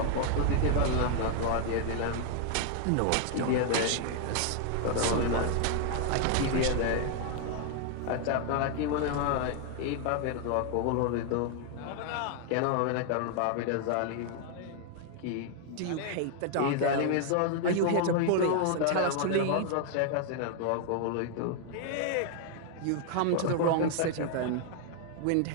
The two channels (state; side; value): different; both; correlation 0.00